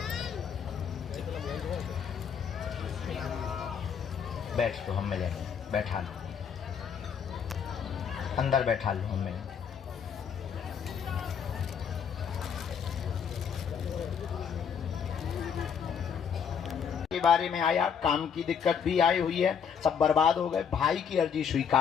बैठ तो हम मिलेंगे, बैठा लो, अंदर बैठा लो, हम मिलेंगे। बारे में आया, काम की दिक्कत भी आई हुई है, सब बर्बाद हो गए। भाई की अर्जी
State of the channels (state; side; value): quieter; right; 7.2 dB